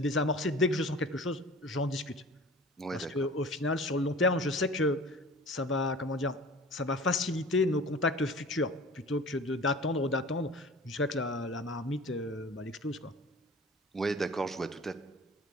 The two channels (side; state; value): both; normal; correlation 0.42